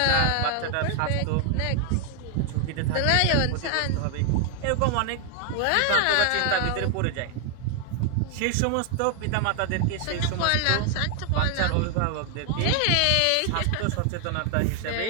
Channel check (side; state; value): both; different; correlation 0.00